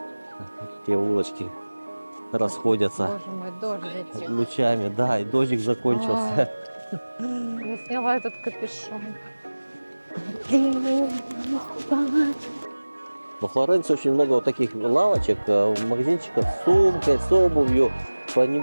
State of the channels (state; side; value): inverted; both; correlation -1.00